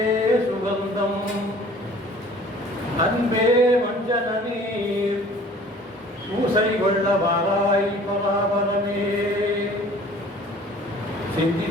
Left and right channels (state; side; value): normal; both; correlation 0.50